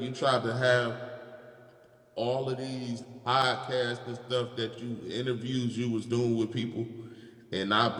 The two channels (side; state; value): both; identical; correlation 1.00